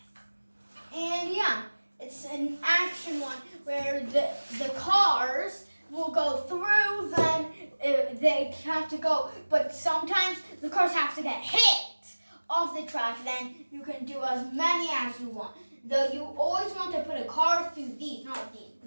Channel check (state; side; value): inverted; both; correlation -1.00